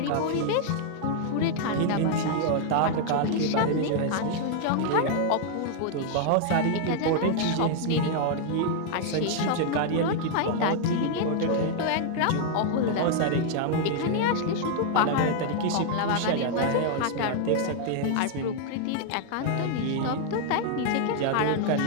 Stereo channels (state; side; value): different; both; correlation 0.00